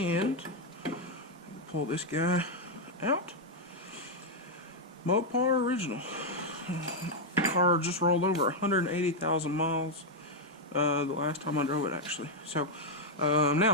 pull this guy out. Mopar original. Car just rolled over 180,000 miles the last time I drove it, actually. So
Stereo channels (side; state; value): both; normal; correlation 0.00